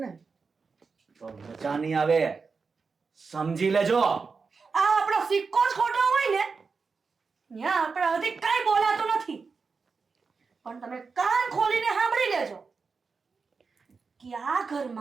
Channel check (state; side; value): quieter; left; 4.9 dB